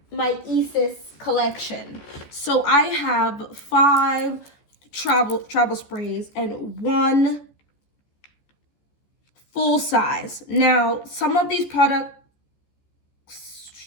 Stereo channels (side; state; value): right; late; 14 ms